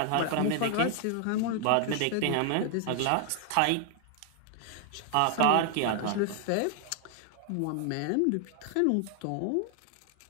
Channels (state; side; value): different; both; correlation 0.00